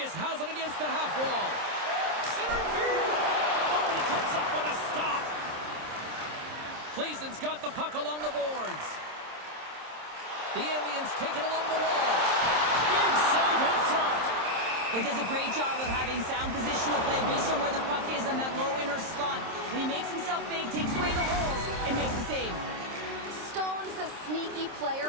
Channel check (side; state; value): left; late; 26 ms